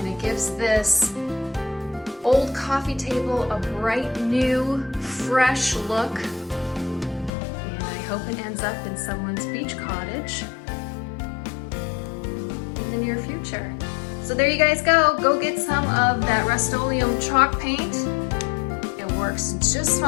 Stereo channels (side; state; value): right; drops out; at 7.3 s